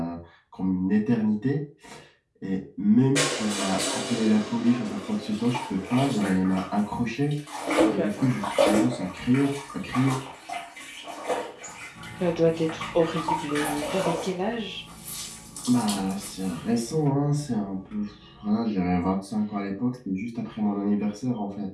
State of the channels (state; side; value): identical; both; correlation 1.00